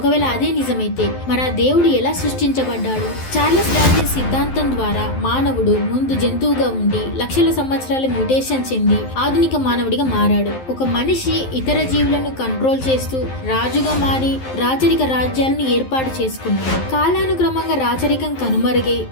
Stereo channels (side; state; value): right; late; 11 ms